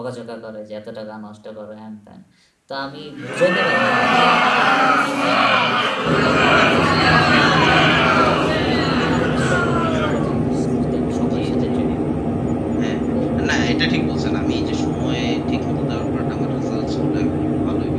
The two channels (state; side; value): identical; both; correlation 1.00